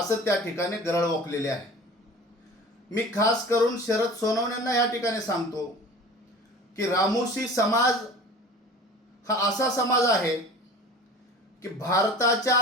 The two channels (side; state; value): both; normal; correlation 0.41